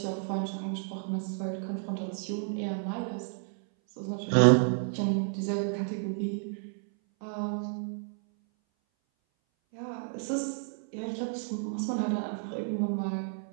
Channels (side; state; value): left; silent; 57 dB below the other